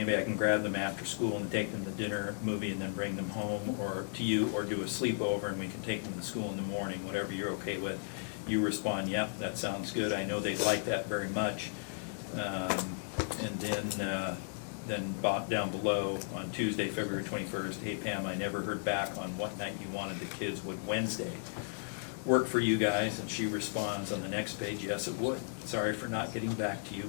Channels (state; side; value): silent; right; digital silence